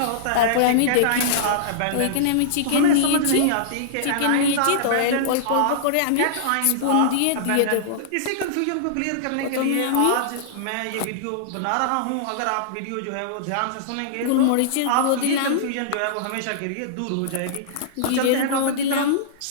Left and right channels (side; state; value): both; different; correlation -0.02